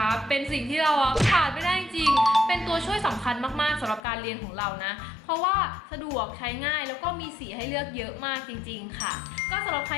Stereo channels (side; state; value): right; drops out; at 4.0 s